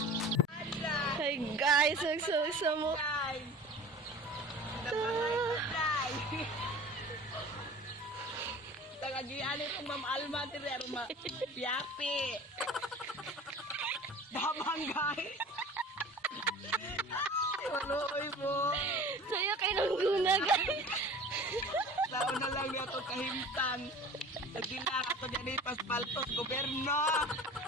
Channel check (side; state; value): both; normal; correlation 0.41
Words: guys, nagsama Tagagian ito Ma'am Alma dire ma yapi. Babanggay. Waloy mo. saya kay nangguna guys. Tao na lang yato kahimtang. Nagdila ato dyan paspaltos gobyerno.